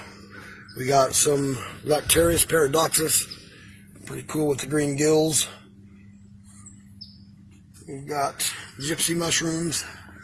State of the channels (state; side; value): identical; both; correlation 1.00